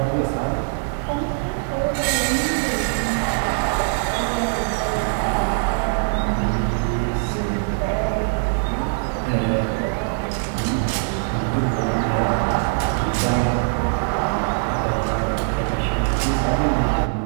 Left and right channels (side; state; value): left; silent; 64 dB below the other